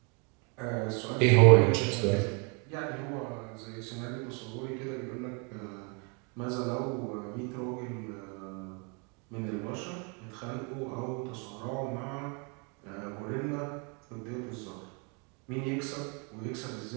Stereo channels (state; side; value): quieter; left; 34.2 dB